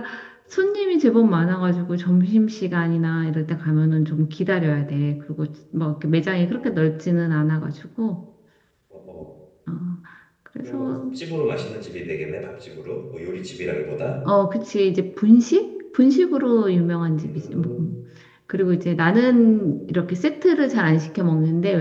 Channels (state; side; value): identical; both; correlation 1.00